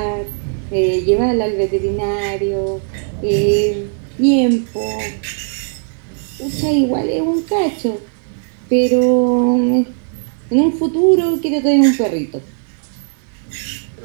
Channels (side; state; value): left; silent; 68 dB below the other